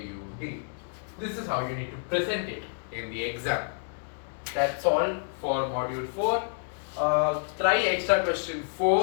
This is how you need to present it in the exam. That's all for module 4. Try extra question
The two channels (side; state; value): right; silent; digital silence